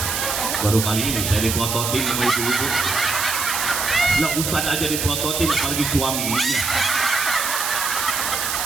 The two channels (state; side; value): noise; right; hiss, 1 dB below the sound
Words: Baru kali ini saya dipototin sama ibu-ibu. Lah Ustaz aja dipototin, apalagi suaminya.